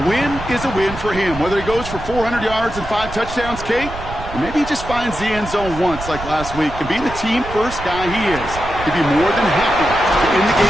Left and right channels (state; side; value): noise; right; rumble, 11 dB below the sound